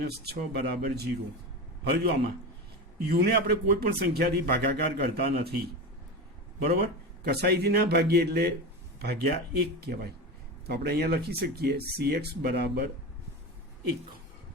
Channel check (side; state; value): both; normal; correlation 0.23